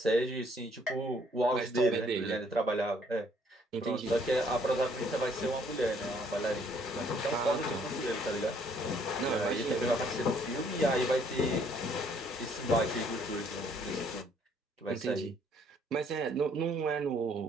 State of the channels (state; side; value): normal; both; correlation 0.64